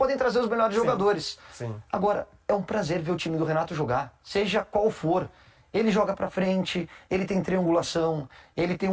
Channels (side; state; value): both; identical; correlation 1.00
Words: trazer os melhores jogadores. Sim. Agora, é um prazer ver o time do Renato jogar, seja qual for. Ele joga pra frente, ele tem triangulação, ele tem